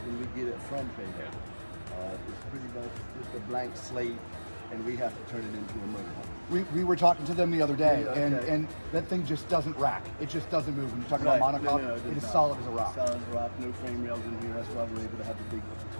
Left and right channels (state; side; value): inverted; both; correlation -1.00